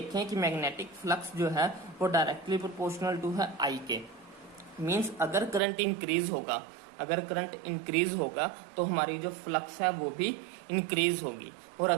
कि मैग्नेटिक फ्लक्स जो है वो डायरेक्टली प्रोपोर्शनल टू है I के। मीन्स अगर करंट इंक्रीज होगा तो हमारी जो फ्लक्स है वो भी इंक्रीज होगी, और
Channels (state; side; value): drops out; left; at 5.6 s